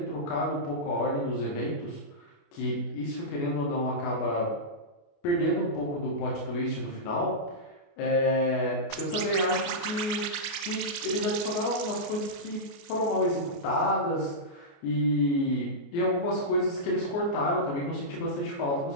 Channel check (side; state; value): right; late; 28 ms